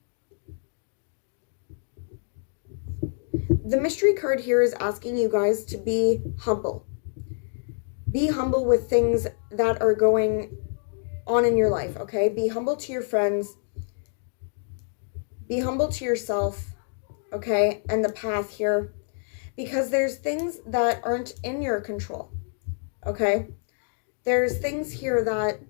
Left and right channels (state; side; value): silent; right; digital silence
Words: The mystery card here is asking you guys to be humble. Be humble with things that are going on in your life, okay? Be humble to your friends. Be humble to yourself, okay? And the path here. Because there's things that aren't in your control, okay? There's things here that